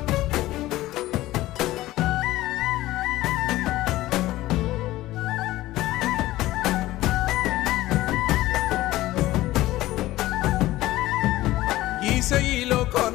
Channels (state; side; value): quieter; right; 16.6 dB